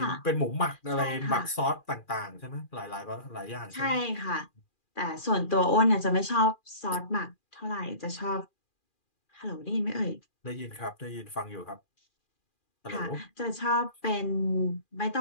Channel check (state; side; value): late; right; 2.4 ms